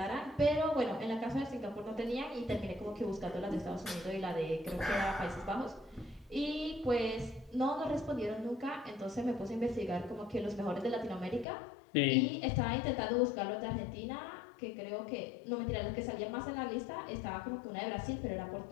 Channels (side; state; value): right; drops out; at 11.5 s